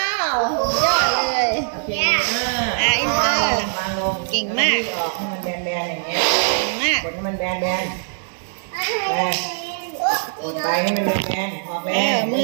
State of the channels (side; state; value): left; silent; digital silence